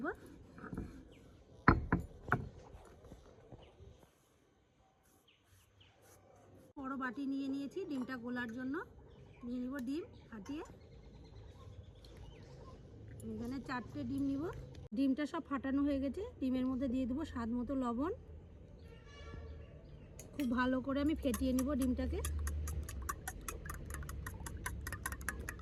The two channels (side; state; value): both; identical; correlation 1.00